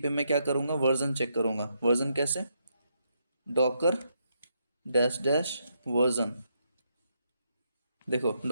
पे मैं क्या करूँगा? वर्जन चेक करूँगा। वर्जन कैसे? Docker dash dash version. देखो,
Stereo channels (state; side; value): inverted; both; correlation -0.78